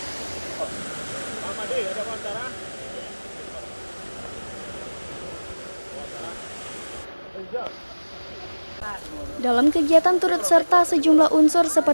Dalam kegiatan turut serta sejumlah unsur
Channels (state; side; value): inverted; both; correlation -1.00